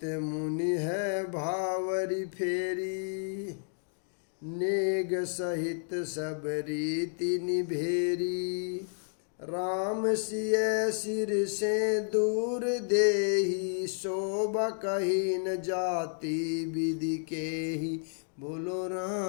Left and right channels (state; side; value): silent; right; digital silence